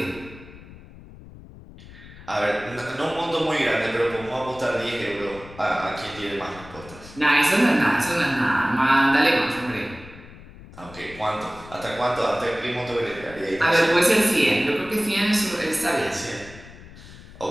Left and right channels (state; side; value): noise; left; rumble, 18 dB below the sound